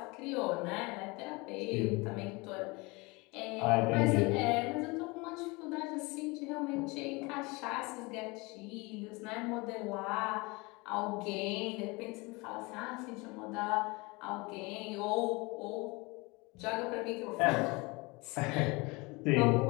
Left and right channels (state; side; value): quieter; right; 25.6 dB